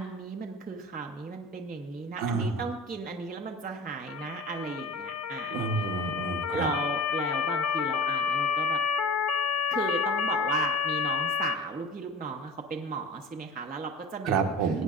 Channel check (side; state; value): both; normal; correlation 0.37